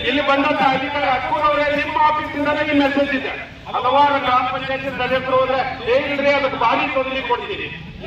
ಇಲ್ಲಿ ಬಂದಂತ ಅಧಿಕಾರಿ ಅಕ್ಕೂರವರೇ ನಿಮ್ಮ ಆಫೀಸಿಂದಾನೇ ಈ ಮೆಸೇಜ್ ಇದೆ. ಹಲವಾರು ಗ್ರಾಮ ಪಂಚಾಯತಿ ಸದಸ್ಯರು ಹೋದ್ರೆ ಹೇಗಿದ್ರೆ ಅದಕ್ಕೆ ಭಾರಿ ತೊಂದರೆ ಕೊಡ್ತೀರಿ.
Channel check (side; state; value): both; identical; correlation 1.00